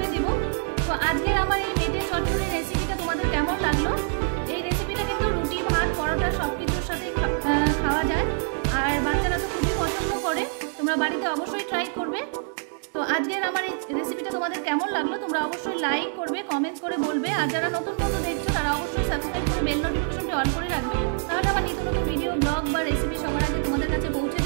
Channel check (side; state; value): left; silent; 61 dB below the other